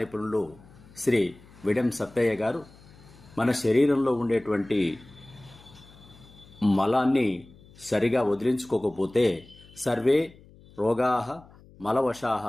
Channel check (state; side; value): noise; left; hum, 24 dB below the sound